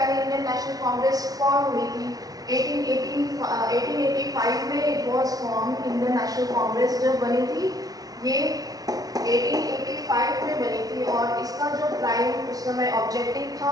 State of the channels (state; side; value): late; left; 0.18 ms